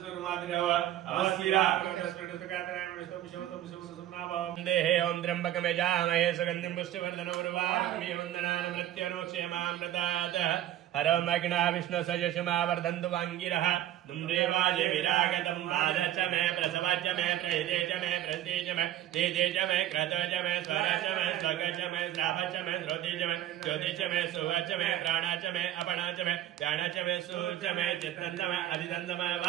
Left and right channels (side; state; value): left; quieter; 12.6 dB